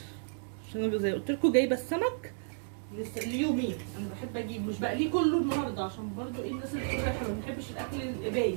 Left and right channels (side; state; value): left; silent; digital silence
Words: عشان انا زي قلت لكم جايبه السمك ليومين. انا بحب اجيب مش بقليه كله النهارده، عشان برضو ايه الناس اللي بتقول احنا ما بنحبش الاكل القبايه.